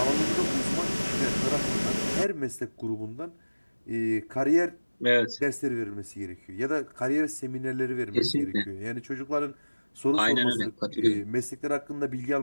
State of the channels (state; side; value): inverted; both; correlation -1.00